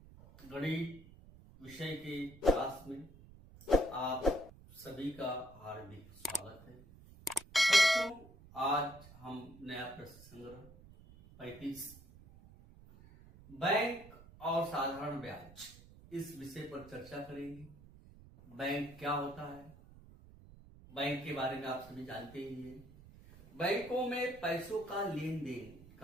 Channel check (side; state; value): right; noise; rumble, 20 dB below the sound